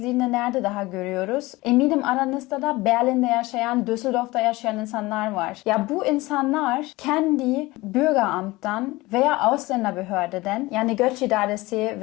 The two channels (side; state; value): right; quieter; 20.6 dB